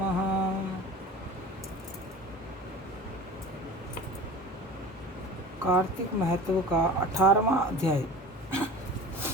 कार्तिक महत्व का 18वां अध्याय।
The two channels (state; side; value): normal; both; correlation 0.38